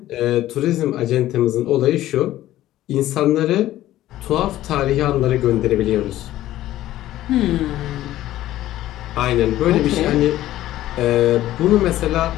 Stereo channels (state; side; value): quieter; right; 14.3 dB